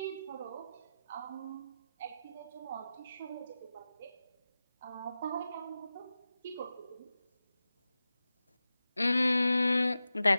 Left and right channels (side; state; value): both; inverted; correlation -0.93